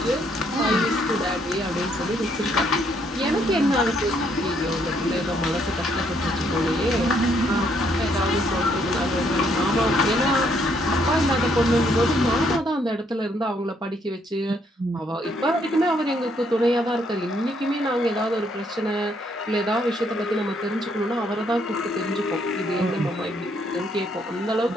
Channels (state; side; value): normal; both; correlation 0.71